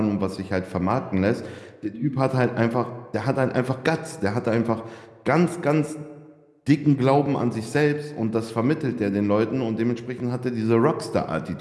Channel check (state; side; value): identical; both; correlation 1.00